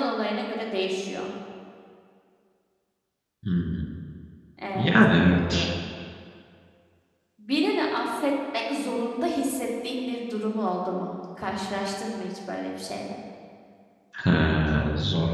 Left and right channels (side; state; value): both; identical; correlation 1.00